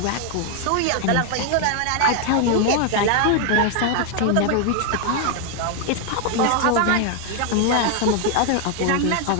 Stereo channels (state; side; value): different; both; correlation 0.00